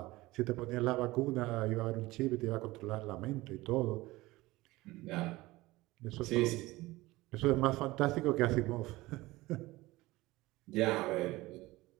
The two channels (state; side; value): quieter; left; 19.5 dB